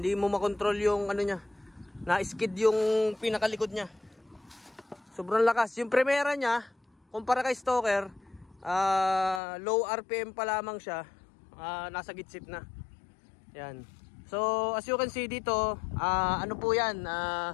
mo makontrol yung ano niya. Na-skid yung pinakalikod niya. Sobrang lakas. Yung primera niya, kumpara kay Stoker, low RPM pa lamang siya. Nasa gitsit na. Yan. So as you can see dito, ano po yan,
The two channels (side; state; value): right; drops out; at 9.4 s